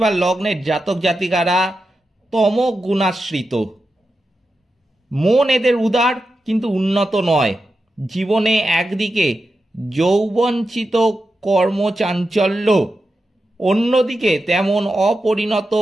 বা লগ্নের জাতক জাতিকারা তম গুণাশ্রিত, মন এদের উদার কিন্তু উন্নত নয়। জীবনে একদিকে যৌবনচিত কর্মচাঞ্চল্য, অন্যদিকে তেমন অপরিণত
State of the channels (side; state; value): both; normal; correlation 0.90